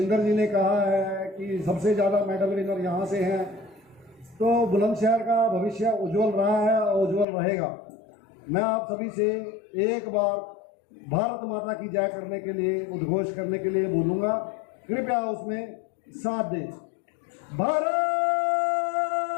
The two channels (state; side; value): drops out; right; at 7.2 s